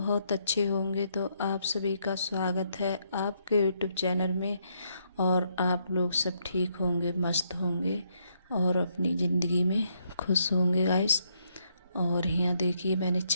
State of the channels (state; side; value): inverted; both; correlation -0.74